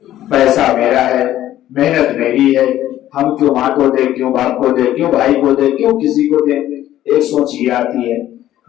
پیسہ میرا ہے، محنت میری ہے، ہم کیوں ماں کو دے، کیوں باپ کو دے، کیوں بھائی کو دے، کیوں کسی کو دے. ایک سوچ یہ آتی ہے.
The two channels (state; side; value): quieter; right; 13.1 dB